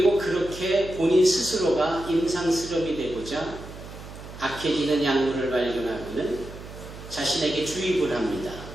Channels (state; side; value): noise; right; hum, 14 dB below the sound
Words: 그렇게 본인 스스로가 임상실험이 되고자 악해지는 약물을 발견하고는 자신에게 주입을 합니다.